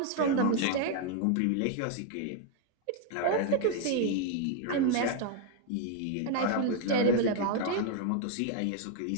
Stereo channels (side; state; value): both; different; correlation 0.00